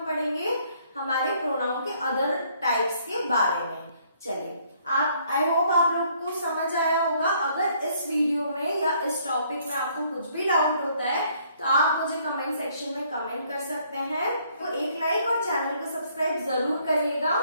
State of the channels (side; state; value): both; inverted; correlation -0.65